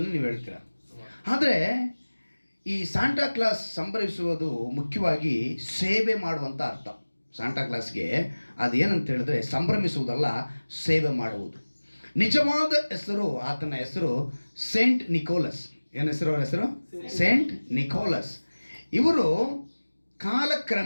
ನೀವು ಹೇಳ್ತೀರಾ. ಆದರೆ ಈ ಸಾಂಟಾ ಕ್ಲಾಸ್ ಸಂಭ್ರಮಿಸುವುದು ಮುಖ್ಯವಾಗಿ ಸೇವೆ ಮಾಡುವಂಥ ಅರ್ಥ. ಸಾಂಟಾ ಕ್ಲಾಸ್ಗೆ ಅದೇನಂತ ಹೇಳಿದ್ರೆ ಸಂಭ್ರಮಿಸುವುದಲ್ಲ, ಸೇವೆ ಮಾಡುವುದು. ನಿಜವಾದ ಹೆಸರು, ಆತನ ಹೆಸರು ಸೇಂಟ್ ನಿಕೋಲಸ್. ಏನು ಹೆಸರು? ಅವರ ಹೆಸರು ಸೇಂಟ್ ನಿಕೋಲಸ್. ಇವರು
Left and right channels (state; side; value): inverted; both; correlation -1.00